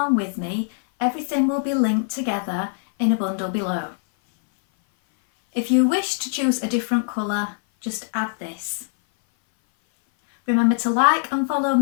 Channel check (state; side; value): silent; right; 58 dB below the other